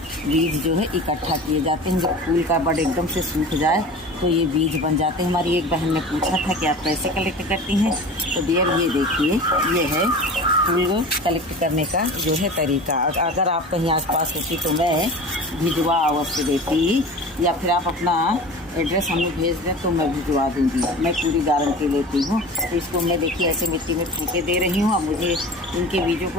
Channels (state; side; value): normal; both; correlation 0.36